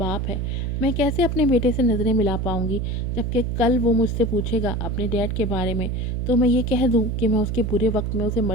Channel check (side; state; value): right; noise; hum, 1 dB below the sound